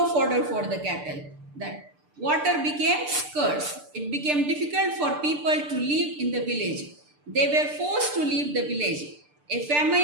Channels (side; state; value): left; late; 6.8 ms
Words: fodder for the cattle. That water became scarce. It became difficult for people to live in the village. They were forced to leave the village. A